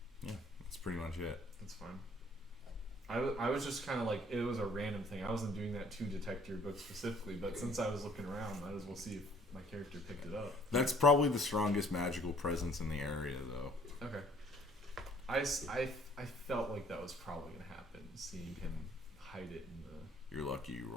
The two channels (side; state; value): both; normal; correlation 0.58